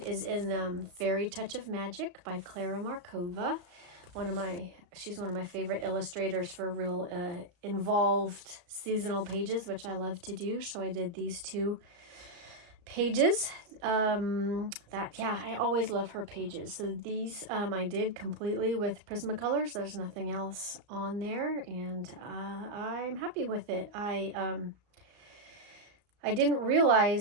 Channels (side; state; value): left; late; 34 ms